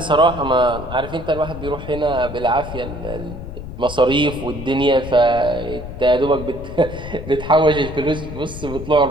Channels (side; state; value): left; noise; rumble, 10 dB below the sound